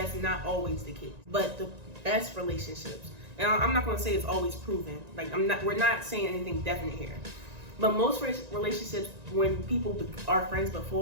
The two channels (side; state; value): left; late; 1.9 ms